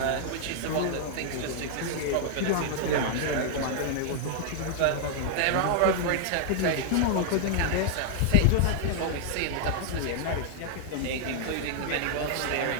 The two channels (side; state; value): both; different; correlation -0.01